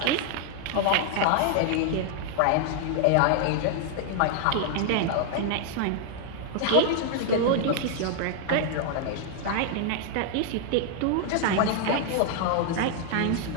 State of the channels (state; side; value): different; both; correlation 0.00